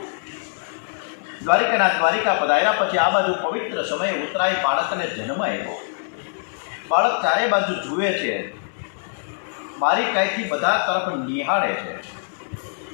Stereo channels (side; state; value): right; silent; 61 dB below the other